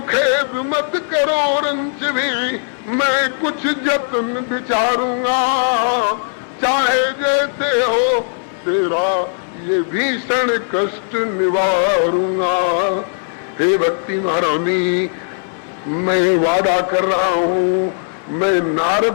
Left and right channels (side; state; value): right; silent; digital silence